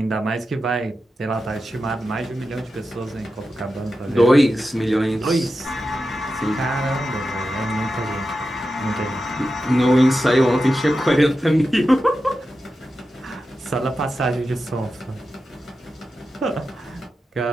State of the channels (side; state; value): both; normal; correlation 0.91